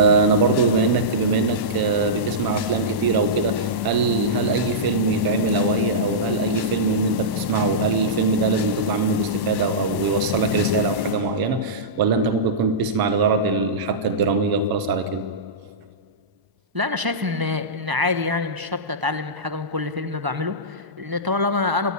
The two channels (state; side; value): late; left; 1.0 ms